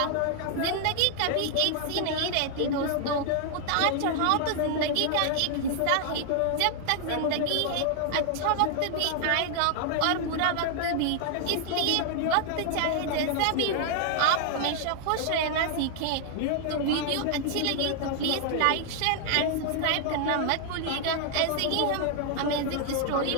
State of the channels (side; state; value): both; different; correlation 0.00